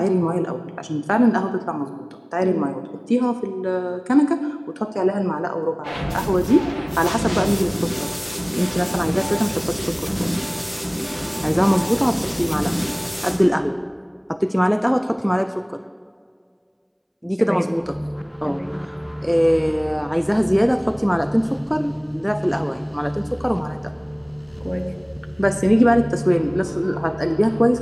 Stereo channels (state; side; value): identical; both; correlation 1.00